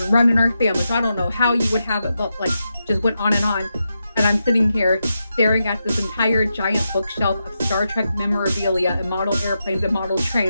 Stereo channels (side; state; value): both; inverted; correlation -0.87